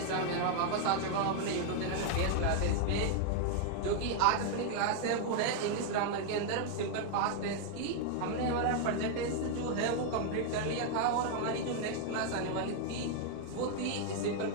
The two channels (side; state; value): both; different; correlation 0.00